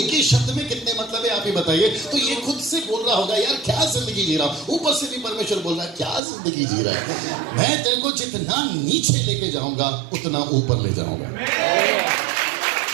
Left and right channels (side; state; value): left; drops out; at 6.2 s